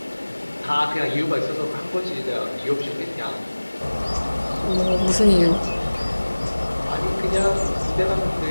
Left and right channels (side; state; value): both; inverted; correlation -1.00